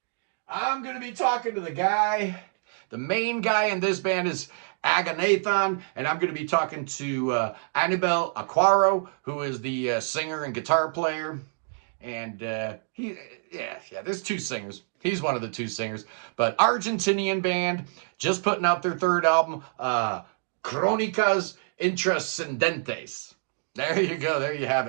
I'm going to be talking to the guy. The main guy in this band is Aganathan, and I'm going to be talking to Anibal Aquaro, who is the singer and guitar player. And there's 2 singers. He's one of the 2 singers. But Argentinian band, just putting out their 3rd album, Crónicas Intrascendentes. There you go. There you have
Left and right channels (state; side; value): silent; left; digital silence